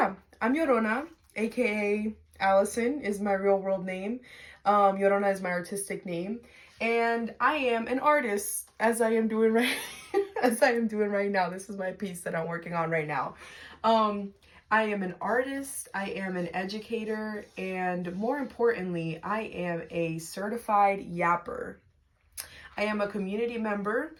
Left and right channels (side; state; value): both; identical; correlation 1.00